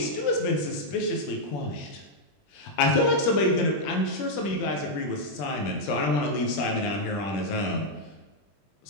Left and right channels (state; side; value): late; right; 21 ms